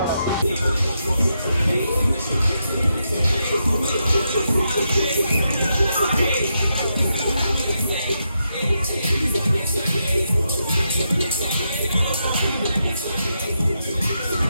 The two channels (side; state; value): both; inverted; correlation -0.83